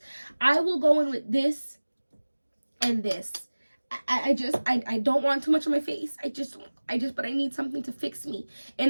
I will go in with this and this. I don't want too much on my face. But I need something to fix me.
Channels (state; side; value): inverted; both; correlation -1.00